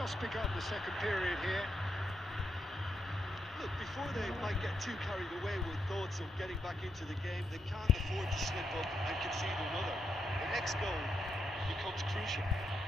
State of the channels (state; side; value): normal; both; correlation 0.80